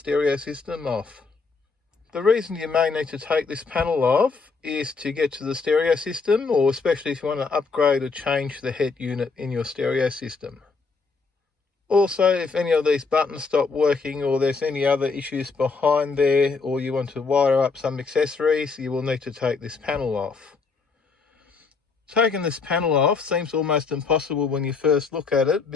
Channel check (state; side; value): quieter; right; 4.6 dB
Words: system off. The reason you may need to take this panel off is to get to the stereo system, or especially if you want to upgrade or change the head unit in your stereo system. Also, if any of these buttons stop working or there's any other issues behind there, or you want to wire up some accessories, you will need to take this panel off. Taking this panel off seems almost impossible when you first look at it